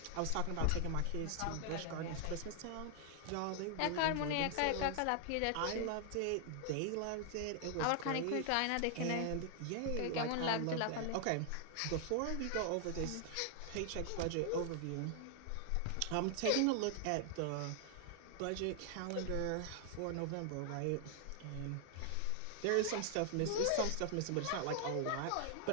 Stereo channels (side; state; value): both; different; correlation 0.00